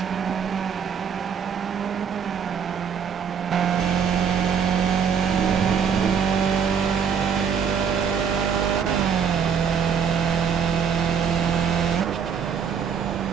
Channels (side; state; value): left; quieter; 7.0 dB